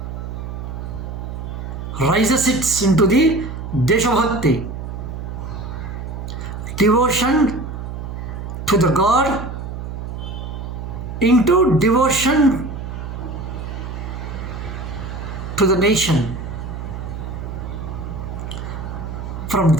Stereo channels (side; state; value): right; noise; hum, 7 dB below the sound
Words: rises it into the Desha Bhakti, devotion to the God into devotion to the nation. From